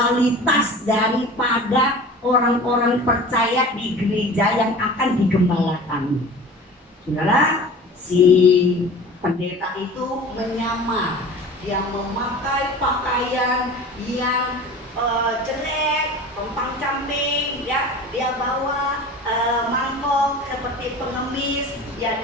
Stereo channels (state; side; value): normal; both; correlation 0.38